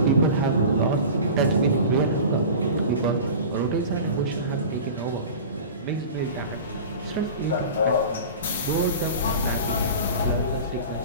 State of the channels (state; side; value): inverted; both; correlation -0.35